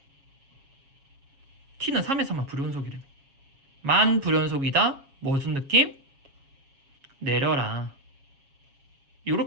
t는 3에서만 불연속이라며. 만 불연속이다. 무슨 느낌? 내려라.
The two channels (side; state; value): left; late; 7.3 ms